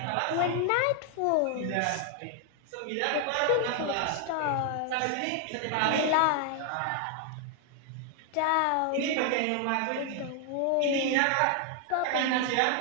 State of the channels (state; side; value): different; both; correlation 0.00